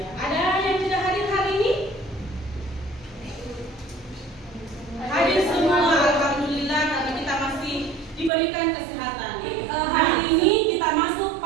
ada yang tidak hadir hari ini? Hadir semua, alhamdulillah, karena kita masih diberikan kesehatan. Hari ini kita masuk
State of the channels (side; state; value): left; drops out; at 8.3 s